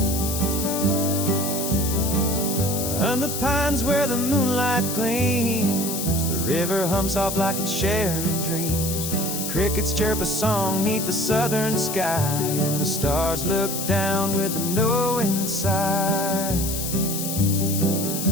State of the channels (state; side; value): noise; left; hiss, 4 dB below the sound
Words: On the pines where the moonlight gleams, the river hums soft like it's sharing dreams. Crickets chirp a song 'neath the southern sky, and the stars look down with a knowing sigh.